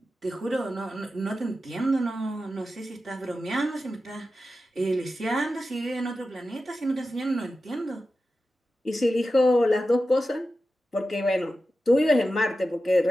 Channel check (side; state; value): both; normal; correlation 0.92